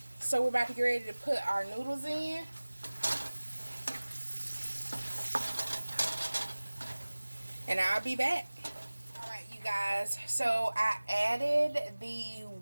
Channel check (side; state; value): both; inverted; correlation -1.00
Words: So we're about to get ready to put our noodles in. And I'll be back. Alright, you guys. So I added the